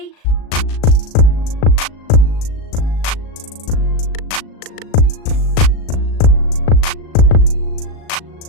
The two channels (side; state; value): right; late; 37 ms